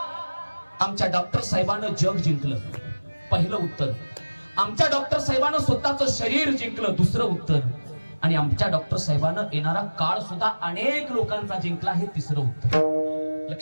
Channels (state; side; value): inverted; both; correlation -1.00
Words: आमच्या डॉक्टर साहेबांना जग जिंकलं, पहिलं उत्तर. आमच्या डॉक्टर साहेबांना स्वतःचं शरीर जिंकलं, दुसरं उत्तर. आणि आमच्या डॉक्टर साहेबांना येणारा काळ सुद्धा अनेक लोकांचा जिंकला, हे तिसरं उत्तर.